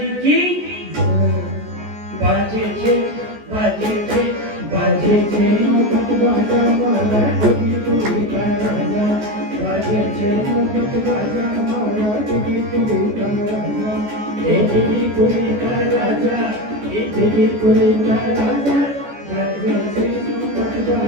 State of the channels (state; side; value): late; left; 14 ms